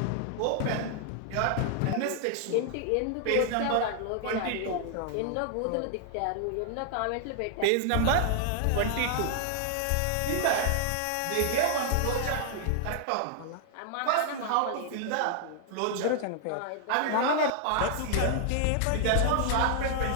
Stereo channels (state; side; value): different; both; correlation 0.00